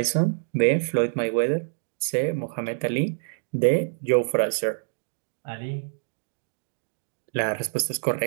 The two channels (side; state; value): left; silent; digital silence